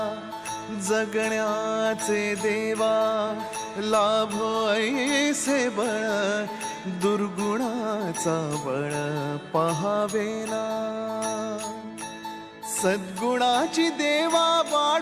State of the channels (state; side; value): identical; both; correlation 1.00